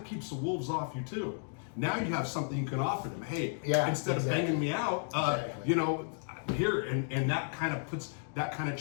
keeps the wolves off you too. Now you have something you can offer them. Hey, instead of banging me out, you know, here, and that kind of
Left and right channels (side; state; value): right; silent; 56 dB below the other